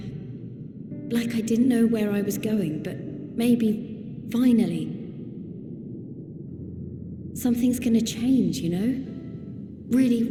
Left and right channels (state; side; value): identical; both; correlation 1.00